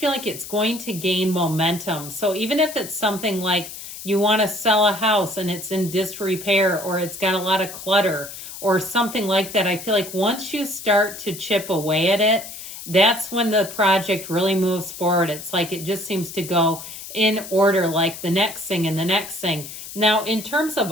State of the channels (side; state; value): left; noise; hiss, 12 dB below the sound